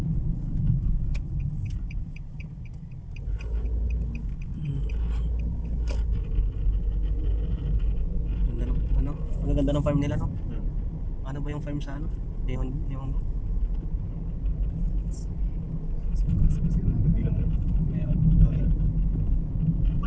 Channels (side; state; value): both; identical; correlation 1.00